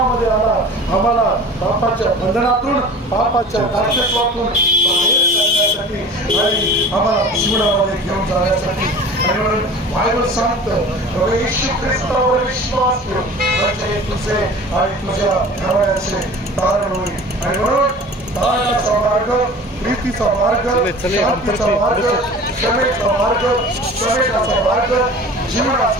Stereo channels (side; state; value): both; normal; correlation 0.40